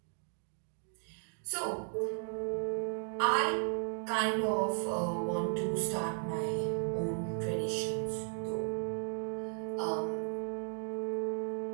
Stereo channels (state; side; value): silent; left; 54 dB below the other